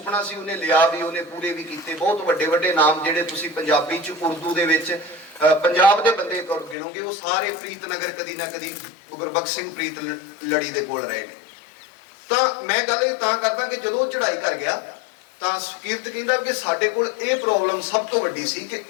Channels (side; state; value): right; drops out; at 6.8 s